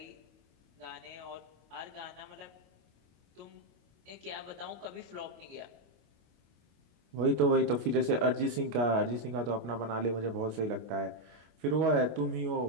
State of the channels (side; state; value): left; late; 25 ms